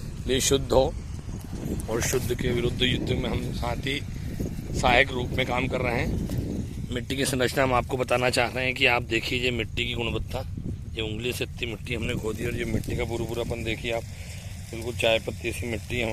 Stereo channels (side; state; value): both; identical; correlation 1.00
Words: लिए शुद्ध हो, और शुद्ध के विरुद्ध युद्ध में हम साथ ही सहायक रूप में काम कर रहे हैं। मिट्टी की संरचना हम आपको बताना चाह रहे हैं कि आप देखिए मिट्टी की गुणवत्ता। ये उंगली से इतनी मिट्टी हमने खो दी और ये मिट्टी का पूरापन देखिए आप, बिल्कुल चाय पत्ती सी मिट्टी है